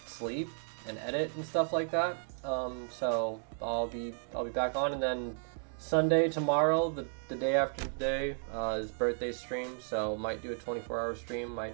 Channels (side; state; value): left; silent; 55 dB below the other